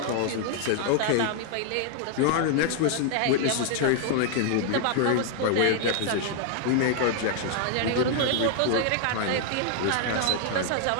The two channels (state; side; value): different; both; correlation 0.00